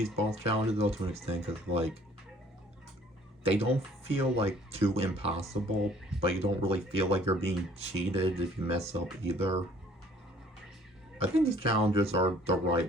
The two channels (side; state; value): both; normal; correlation 0.56